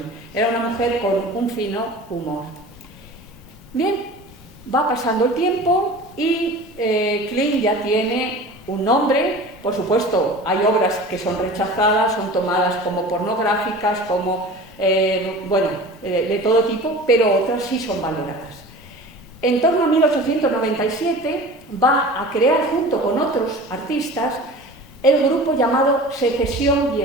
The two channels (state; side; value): normal; both; correlation 0.38